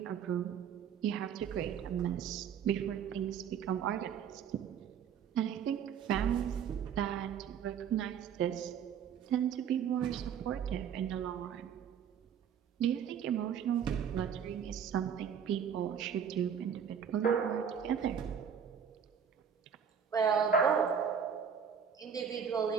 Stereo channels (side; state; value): left; quieter; 7.8 dB